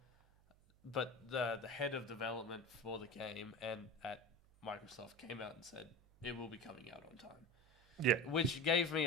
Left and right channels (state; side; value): noise; right; hum, 28 dB below the sound